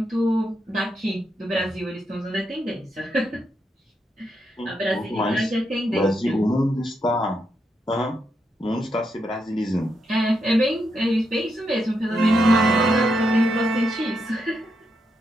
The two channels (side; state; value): both; normal; correlation 0.82